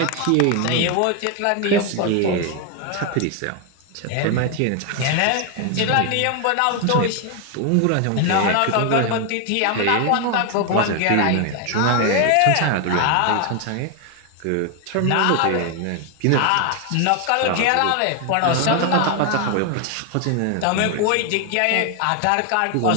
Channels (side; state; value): both; different; correlation 0.01